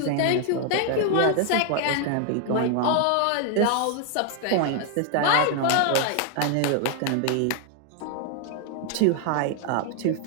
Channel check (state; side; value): different; both; correlation 0.00